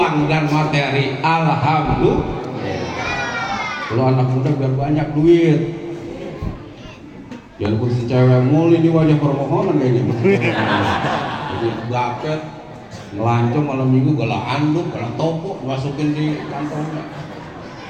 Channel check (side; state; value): both; identical; correlation 1.00